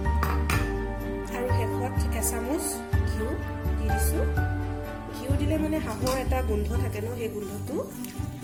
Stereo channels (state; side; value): identical; both; correlation 1.00